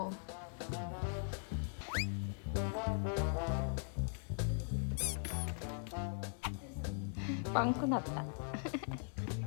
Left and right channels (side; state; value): right; silent; 51 dB below the other